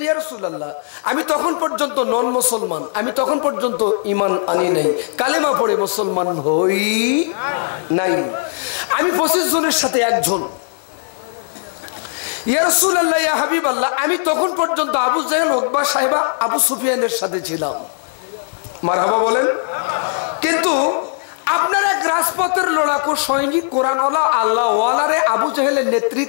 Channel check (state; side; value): silent; right; 61 dB below the other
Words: ইয়া রাসূলুল্লাহ আমি তখন পর্যন্ত নন মুসলমান আমি তখন পর্যন্ত ঈমান আনি নাই কালেমা পড়ে মুসলমান হই নাই আমি 25 জনের সাথে একজন ইয়া রাসূলুল্লাহ ইয়া হাবিবাল্লাহ আমি তখন পর্যন্ত আবু জাহেল উতবা সাহেবা আবু সুফিয়ানের সাথে ছিলাম মারহাবা বলেন কিন্তু আপনার এক রাজপথের লড়াকু সৈনিক কোরআনওয়ালা আল্লাহওয়ালারে আবু জাহেলের